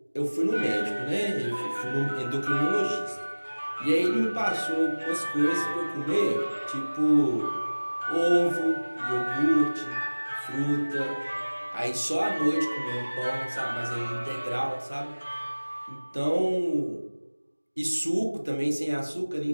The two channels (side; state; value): both; inverted; correlation -1.00